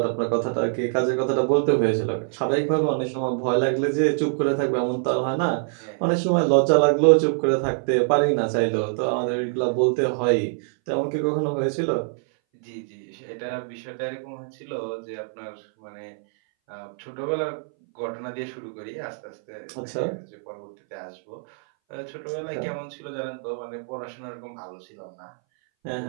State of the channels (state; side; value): silent; left; 60 dB below the other